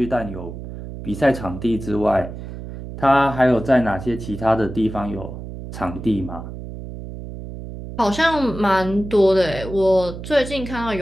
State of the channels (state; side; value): noise; right; hum, 10 dB below the sound